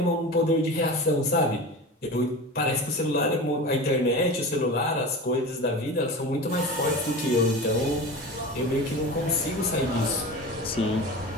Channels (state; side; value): normal; both; correlation 0.30